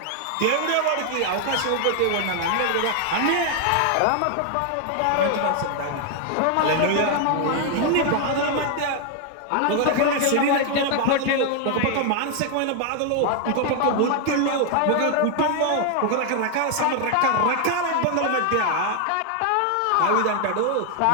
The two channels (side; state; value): both; different; correlation 0.00